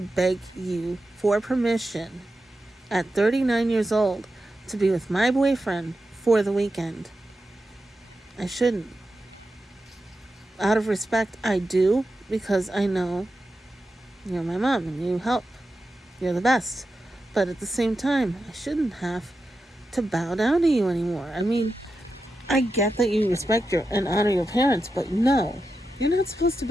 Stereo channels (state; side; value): normal; both; correlation 0.90